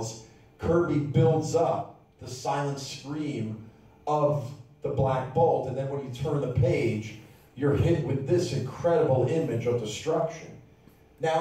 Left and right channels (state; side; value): identical; both; correlation 1.00